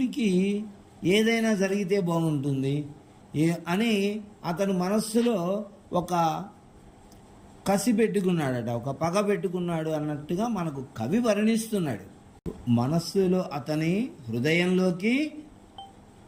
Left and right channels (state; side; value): identical; both; correlation 1.00